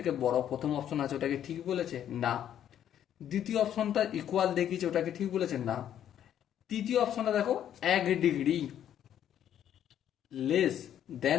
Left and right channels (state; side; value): quieter; right; 10.3 dB